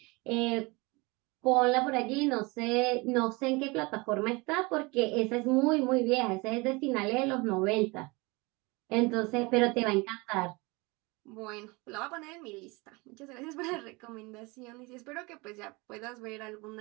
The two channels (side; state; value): left; quieter; 25.8 dB